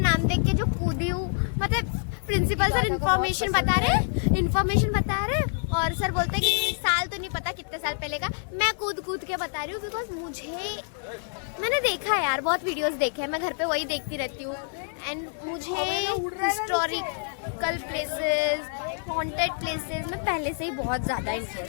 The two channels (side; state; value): right; silent; digital silence